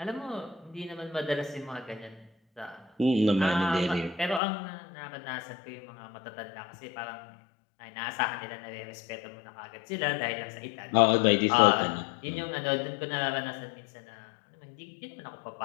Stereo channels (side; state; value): right; drops out; at 4.4 s